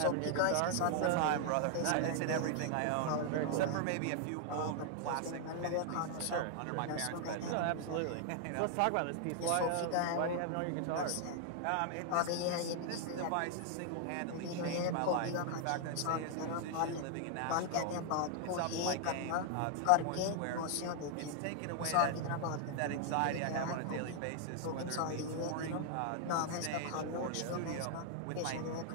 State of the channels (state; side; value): different; both; correlation 0.00